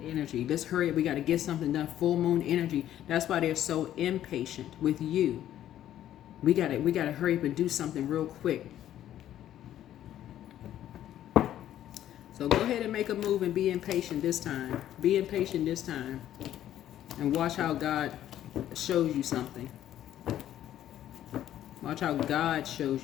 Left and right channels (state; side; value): quieter; right; 11.8 dB